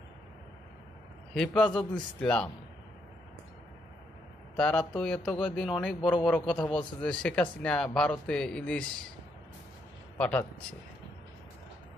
হেফাজত ইসলাম তারা তো এত কয়েকদিন অনেক বড় বড় কথা বলছে যে শেখ হাসিনা ভারতে ইলিশ পাঠাচ্ছে,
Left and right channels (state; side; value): normal; both; correlation 0.76